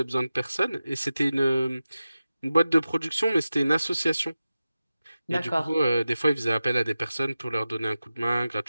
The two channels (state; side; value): inverted; both; correlation -0.94